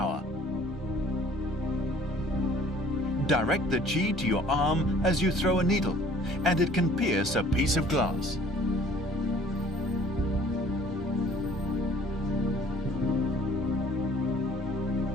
Direct the Qi to your arm as you throw a needle, and it can pierce a piece of glass.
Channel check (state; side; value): normal; both; correlation 0.53